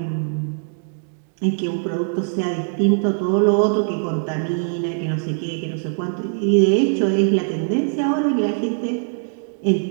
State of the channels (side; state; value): left; silent; digital silence